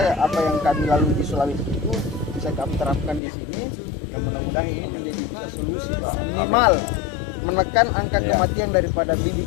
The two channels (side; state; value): right; drops out; at 3.2 s